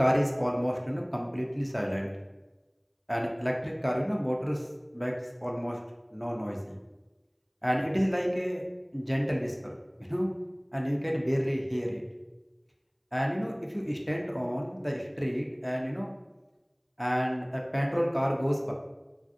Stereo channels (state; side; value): identical; both; correlation 1.00